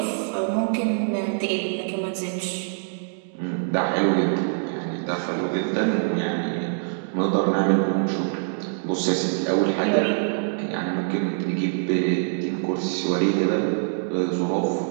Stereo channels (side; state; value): left; silent; digital silence